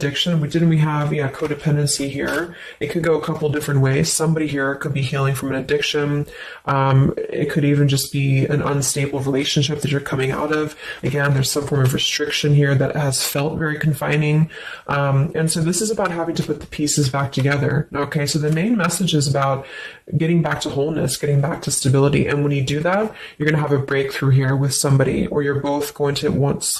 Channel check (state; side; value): identical; both; correlation 1.00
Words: We have codependency here. It could go a couple different ways. Somebody here could be healing from an addiction. It could even just be an unstable relationship that you're coming out of. Again, there's some form of restriction here that has felt very confining. And so this is about having to put the pieces back together. Okay, so the main message is about getting back to wholeness, getting back to stability. And when you do that, you're going to have a breakthrough here with somebody, or you're both going to